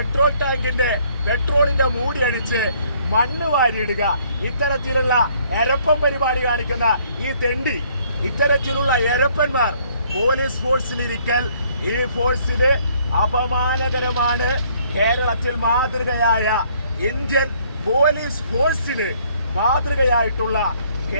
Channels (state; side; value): inverted; both; correlation -0.63